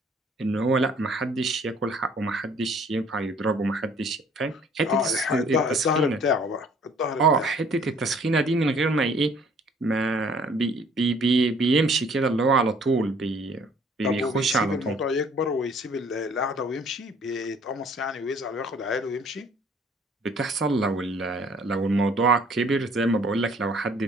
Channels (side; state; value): both; normal; correlation 0.57